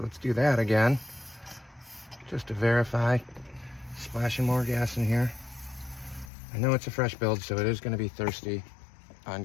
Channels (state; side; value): drops out; right; at 6.3 s